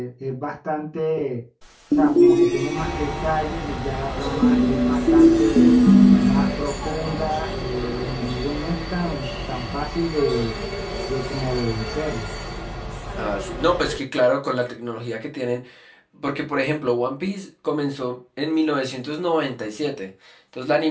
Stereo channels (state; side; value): identical; both; correlation 1.00